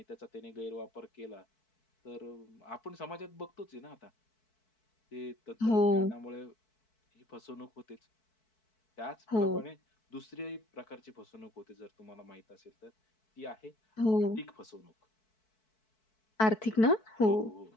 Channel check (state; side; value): late; right; 4.6 ms